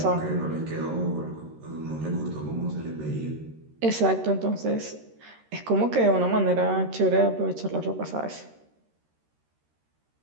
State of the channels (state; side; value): late; left; 13 ms